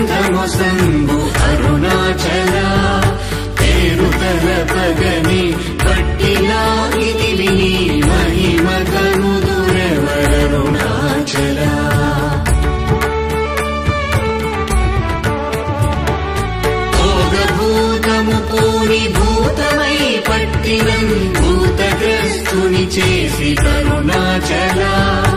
సంభు అరుణాచల పేరు తలపగని పట్టిలాగిని విని మహిమ కనుదురెవరరుణాచల భోగభూతము పూని భూతమై పట్టినం భూతగ్రస్తుని చేసి కరుణాచల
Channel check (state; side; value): identical; both; correlation 1.00